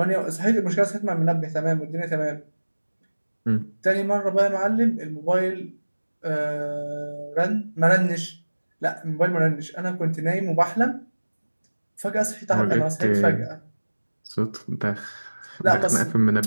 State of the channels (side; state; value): both; inverted; correlation -1.00